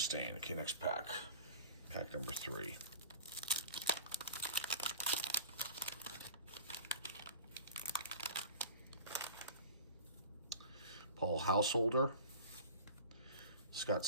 Okay, next pack. Pack number 3. Paul Householder, Scott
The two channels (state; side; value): inverted; both; correlation -0.38